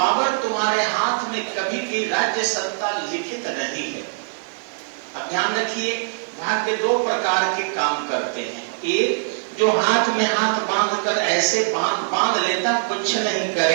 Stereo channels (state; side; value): silent; left; digital silence